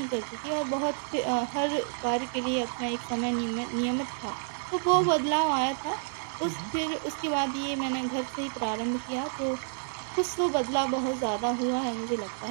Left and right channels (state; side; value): silent; left; digital silence